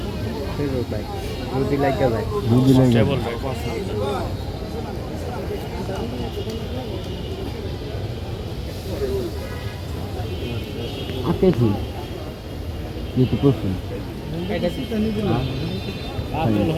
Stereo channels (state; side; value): identical; both; correlation 1.00